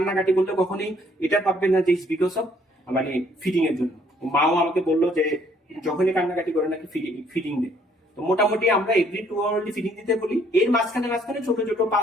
করলে কখনোই এটা ভাববেন না যে ইটস বিকজ অফ মানে ফিডিং এর জন্য। মাও আমাকে বললো যে যখনই কান্নাকাটি করে নাকি ফিডিং দেয়। তো মোটামুটি আমরা এভরি 2 আওয়ারলি ফিডিং দিতে বলি, এর মাঝখানে ছোট ছোট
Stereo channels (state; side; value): normal; both; correlation 0.64